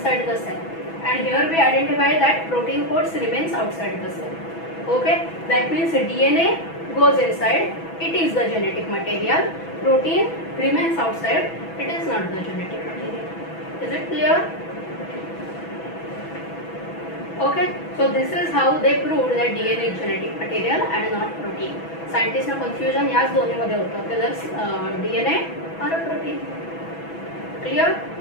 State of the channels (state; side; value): late; right; 6.1 ms